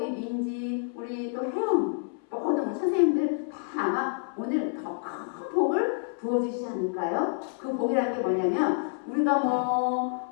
민지 우리 또 혜영 모든 선생님들 다 아마 오늘 더 큰 복을 부어주시지 않을까요? 그 복이라는 게 뭐냐면 우리가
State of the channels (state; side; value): silent; right; 59 dB below the other